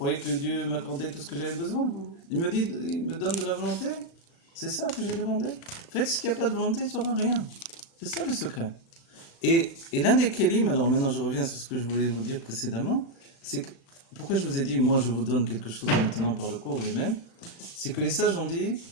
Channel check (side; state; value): right; late; 35 ms